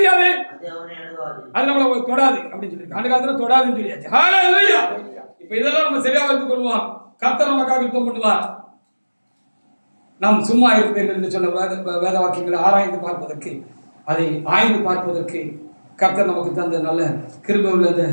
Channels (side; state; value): both; inverted; correlation -1.00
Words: அது நம்மளை தொடாது அப்படின்னு சொல்லி அந்த காலத்துல தொடாதுன்னு சொல்லியாச்சு. ஹalleluya. இப்ப இதெல்லாம் நம்ம சரியா வைத்துக் கொள்வோம். கர்த்தர் நமக்காக யுத்தம் பண்ணுவார். நாம் சும்மா இருப்பீர்கள் என்று சொன்ன வேத வாக்கியங்களை ஆராய்ந்து பார்ப்பதற்கு, அதை ஆய்ந்து பார்ப்பதற்கு கர்த்தர் நமக்கு தந்த நல்ல கிருபை உள்ள இந்த